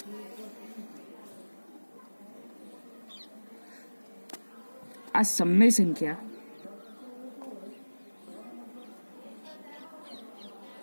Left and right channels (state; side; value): inverted; both; correlation -1.00